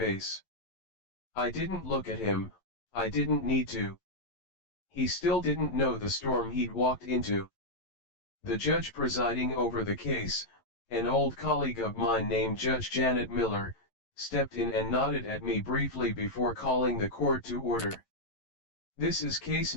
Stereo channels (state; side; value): late; right; 11 ms